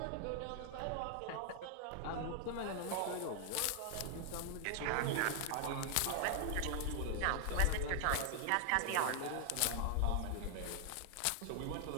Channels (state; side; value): different; both; correlation 0.00